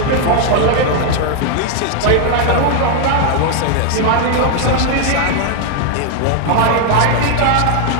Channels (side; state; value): both; different; correlation 0.00